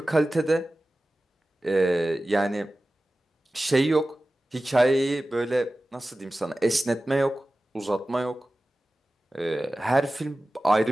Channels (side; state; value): both; normal; correlation 0.96